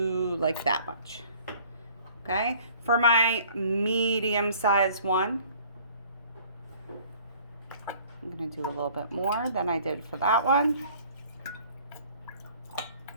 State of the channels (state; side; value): inverted; both; correlation -0.54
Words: like that much, okay? For my medium-sized one, I'm going to do a little bit more than I did for that one.